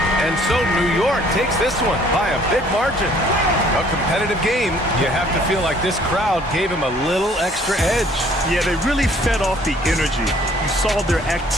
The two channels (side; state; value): both; normal; correlation 0.58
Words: And so New York takes this one by a big margin. A competitive game. You have to feel like this crowd gave him a little extra edge. Yeah, they really fed off the energy. You saw their